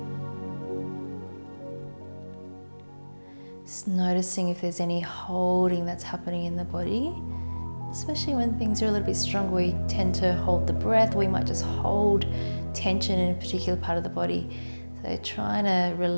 Just noticing if there's any holding that's happening in the body, especially when things are a little bit stronger. We tend to hold the breath. We might just hold tension in a particular part of the body. So trying to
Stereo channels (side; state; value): both; inverted; correlation -1.00